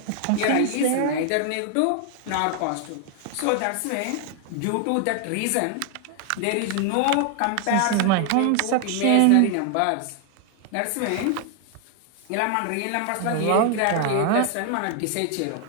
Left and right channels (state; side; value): different; both; correlation 0.00